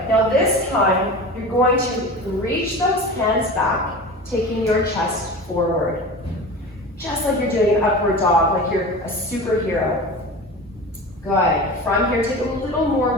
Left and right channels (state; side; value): normal; both; correlation 0.32